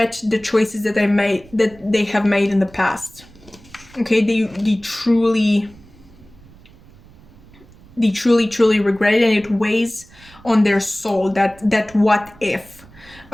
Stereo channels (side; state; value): right; noise; rumble, 24 dB below the sound